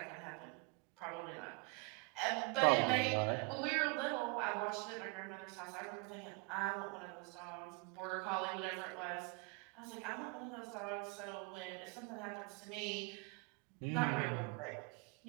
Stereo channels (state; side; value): quieter; left; 29.2 dB